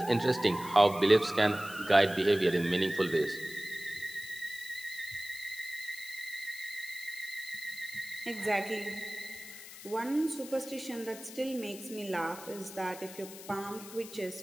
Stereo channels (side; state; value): left; noise; hiss, 15 dB below the sound